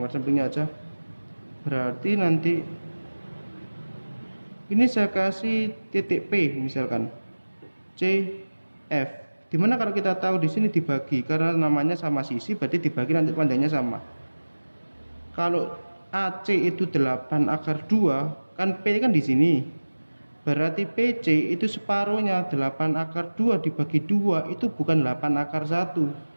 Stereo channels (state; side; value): inverted; both; correlation -1.00